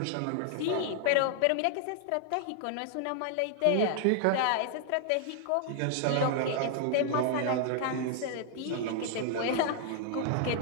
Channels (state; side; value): different; both; correlation 0.00